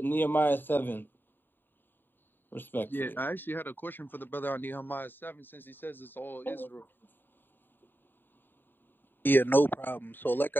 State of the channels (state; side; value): late; right; 0.094 ms